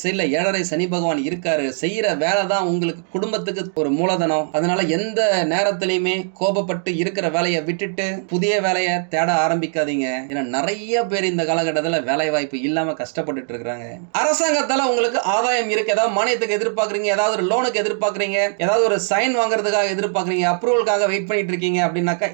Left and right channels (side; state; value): left; silent; 57 dB below the other